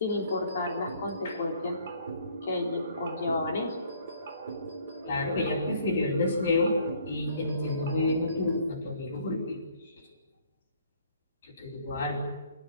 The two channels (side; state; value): both; inverted; correlation -0.60